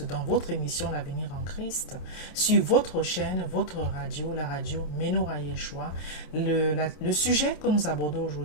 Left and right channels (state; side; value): late; right; 27 ms